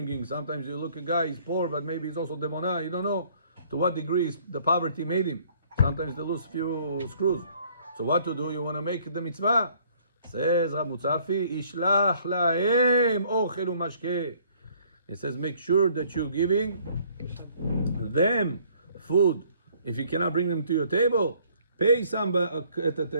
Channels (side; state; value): both; inverted; correlation -0.61